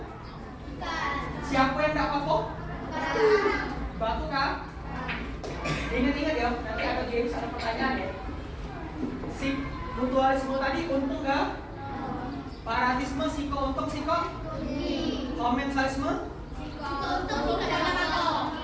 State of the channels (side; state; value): both; identical; correlation 1.00